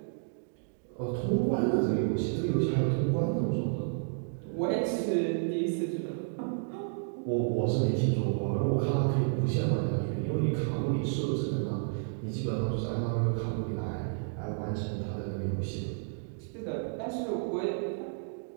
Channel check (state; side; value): silent; left; digital silence